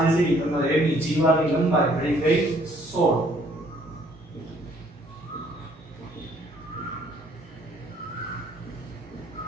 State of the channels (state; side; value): normal; both; correlation 0.62